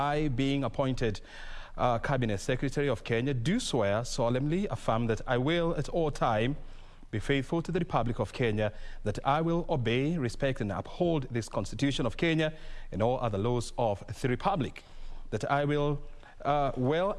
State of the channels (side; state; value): both; identical; correlation 1.00